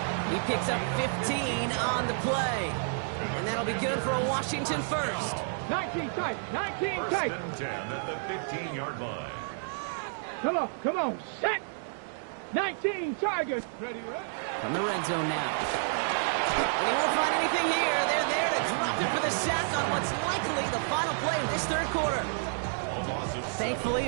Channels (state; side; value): silent; left; digital silence